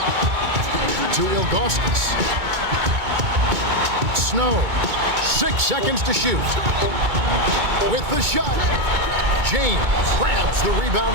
To Ilgauskas. Snow. 6 seconds to shoot. With the shot. James grabs the rebound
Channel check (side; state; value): left; late; 2.2 ms